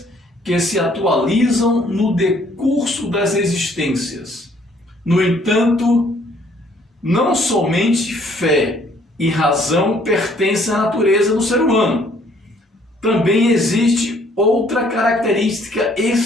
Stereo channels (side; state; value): both; normal; correlation 0.62